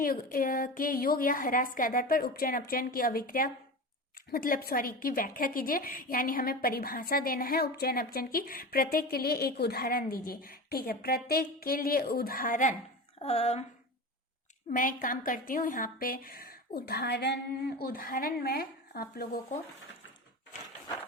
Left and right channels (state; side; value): normal; both; correlation 0.28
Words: के योग या ह्रास के आधार पर उपचयन अपचयन की अभिक्रिया की व्याख्या कीजिए, यानी हमें परिभाषा देना है उपचयन अपचयन की। प्रत्येक के लिए एक उदाहरण दीजिए। ठीक है, प्रत्येक के लिए उदाहरण मैं काम करती हूँ यहाँ पे। उदाहरण मैं आप लोगों को